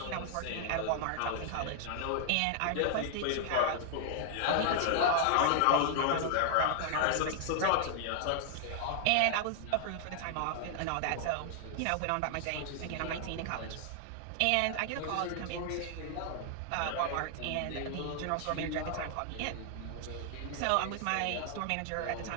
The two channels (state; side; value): different; both; correlation 0.00